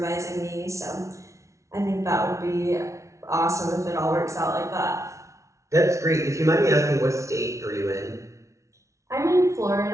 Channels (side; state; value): left; late; 0.14 ms